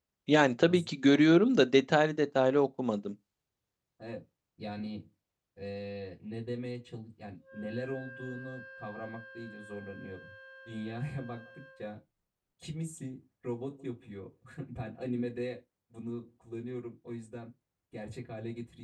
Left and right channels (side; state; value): both; identical; correlation 1.00